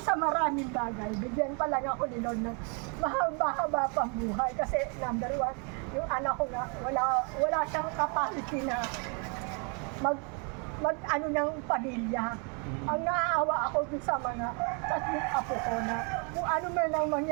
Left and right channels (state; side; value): quieter; left; 36.2 dB